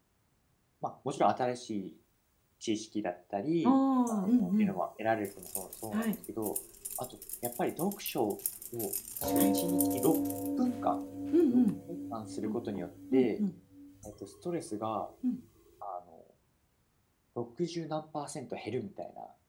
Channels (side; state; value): both; identical; correlation 1.00